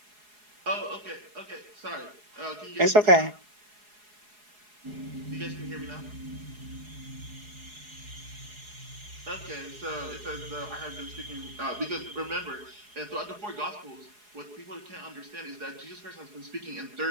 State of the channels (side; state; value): left; late; 4.8 ms